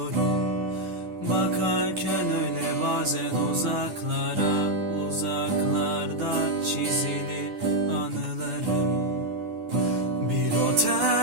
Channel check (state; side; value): late; left; 9.7 ms